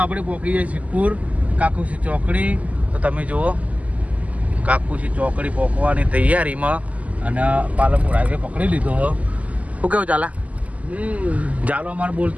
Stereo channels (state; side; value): late; left; 0.072 ms